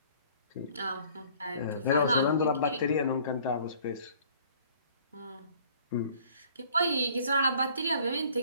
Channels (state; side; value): inverted; both; correlation -0.54